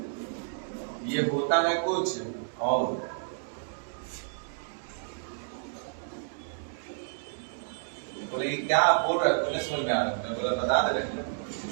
ये होता है कुछ और। बोले कि क्या आप बोल रहे हो, तो समझ में आ रहा है, तो बता दे रहे हैं।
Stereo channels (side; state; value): left; silent; digital silence